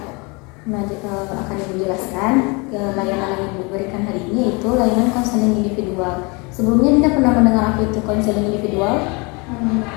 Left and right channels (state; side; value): quieter; right; 28.9 dB